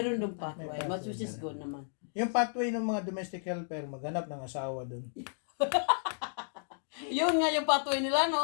dong pathway, May which is pathway good naman. Yung pathway ng mga domestic helper, maghanap ng asawa doon. Yun nga yung pathway nila,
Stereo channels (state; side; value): silent; right; digital silence